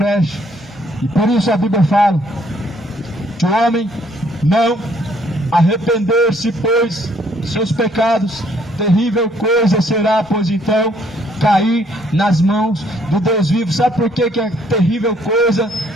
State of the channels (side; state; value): both; normal; correlation 0.65